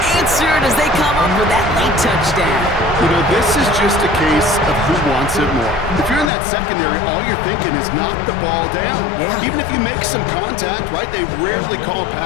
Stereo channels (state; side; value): drops out; right; at 6.3 s